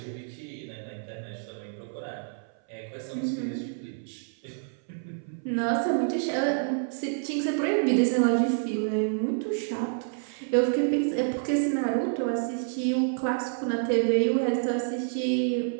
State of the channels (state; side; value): silent; left; 56 dB below the other